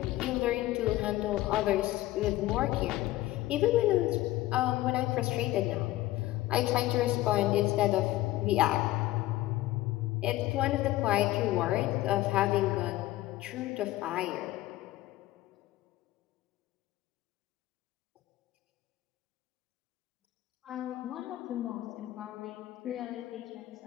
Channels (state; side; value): quieter; right; 16.4 dB